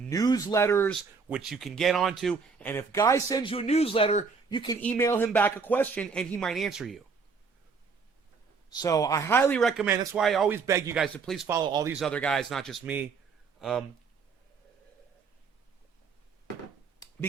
newsletters, which you can get onto. And if Guy sends you a newsletter, you can email him back a question, and he might answer you. So I highly recommend. That's why I always beg you guys to please follow all these other guys, not just me.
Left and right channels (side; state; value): left; quieter; 5.1 dB